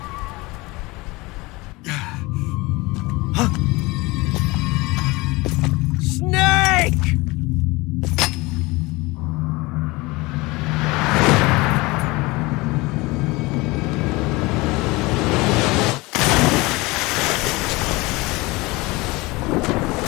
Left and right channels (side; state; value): right; quieter; 22.9 dB